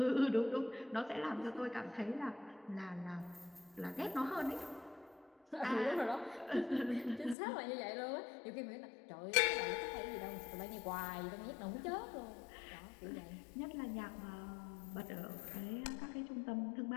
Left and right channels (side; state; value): right; drops out; at 7.4 s